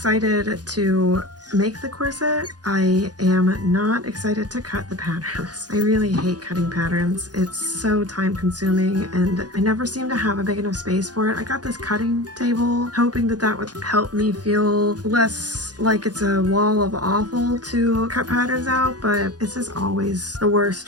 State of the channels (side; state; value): left; late; 0.69 ms